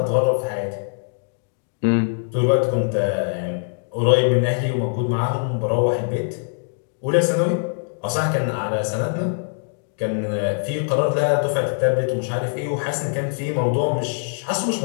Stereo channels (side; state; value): right; silent; digital silence